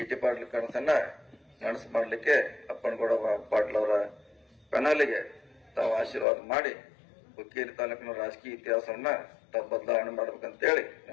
ಪಾಟೀಲ್ ಕನಸನ್ನ ನನಸು ಮಾಡ್ಲಿಕ್ಕೆ ಅಪ್ಪನಗೌಡ ಪಾಟೀಲ್ ಅವರ ಕನಲಿಗೆ ತಾವು ಆಶೀರ್ವಾದ ಮಾಡಿ ಹುಕ್ಕೇರಿ ತಾಲೂಕಿನ ರಾಜಕೀಯ ಇತಿಹಾಸವನ್ನ ತಾವು ಬದಲಾವಣೆ ಮಾಡ್ಬೇಕಂತೇಳಿ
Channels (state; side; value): drops out; right; at 6.2 s